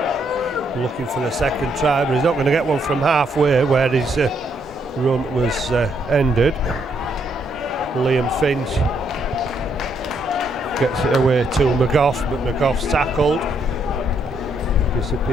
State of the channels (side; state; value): both; normal; correlation 0.74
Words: looking for the second try, but he's not going to get one from halfway where his run was ended. Liam Finch gets it away to McGough, but McGough's tackled.